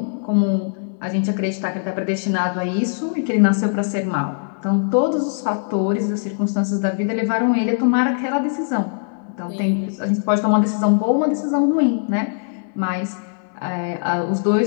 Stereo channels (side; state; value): right; silent; digital silence